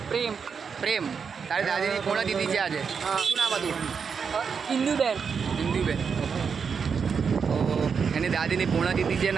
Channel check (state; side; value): quieter; left; 6.1 dB